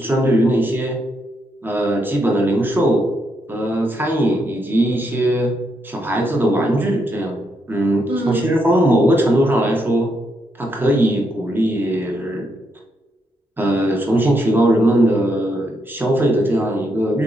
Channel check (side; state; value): both; normal; correlation 0.79